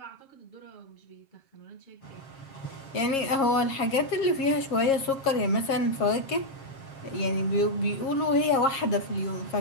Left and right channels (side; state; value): right; late; 7.4 ms